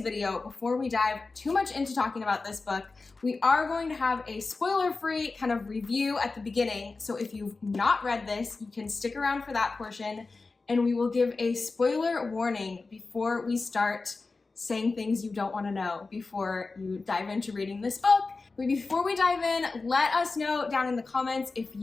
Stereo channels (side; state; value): right; quieter; 3.9 dB